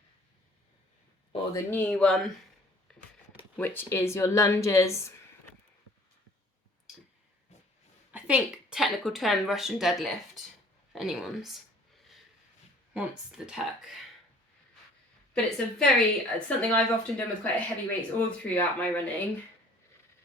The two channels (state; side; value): normal; both; correlation 0.53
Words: Or the new one, which is your lunges. I think technical term Russian deadlift, if anyone's wants the tech. But it's it's something I've often done with quite heavy weights all throughout my running.